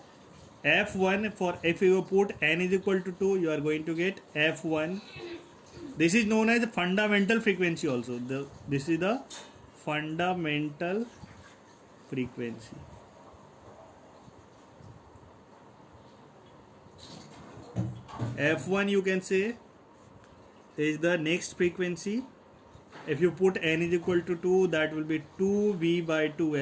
F1, for if you put n is equal to 2, you are going to get F1. This is known as the fundamental frequency also. This is the fundamental frequency. F1 you can say is the next frequency. If you put n is equal to 2, that will be 2V by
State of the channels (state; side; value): identical; both; correlation 1.00